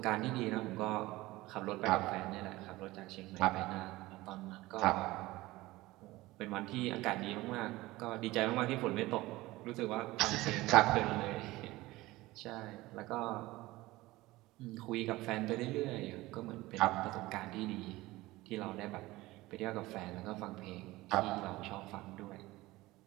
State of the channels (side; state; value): left; quieter; 19.0 dB